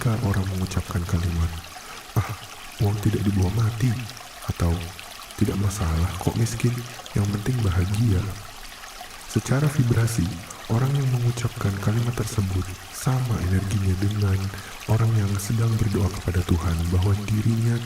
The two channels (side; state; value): both; identical; correlation 1.00